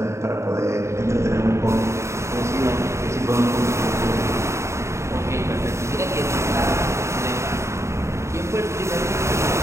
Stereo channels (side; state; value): left; late; 0.14 ms